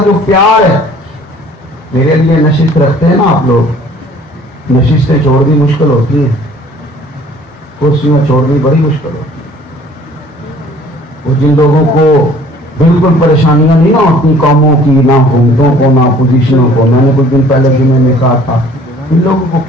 جو پیار ہے. میرے لیے نشست رکھتے ہیں نا آپ لوگ، نشستیں چھوڑنی مشکل ہوتی ہیں، کرسیاں چھوڑنی بڑی مشکل ہوتی ہے. وہ جن لوگوں کو بالکل پریشانیاں نہیں نہ ہوتی قوموں کی، نہ حکومتوں کو، نہ اپوزیشنوں کو، میں نے کچھ دن پہلے جمعے میں کہا تھا ان لوگوں کو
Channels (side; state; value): both; normal; correlation 0.54